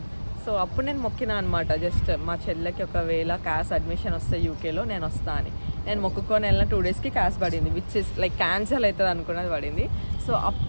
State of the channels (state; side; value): inverted; both; correlation -1.00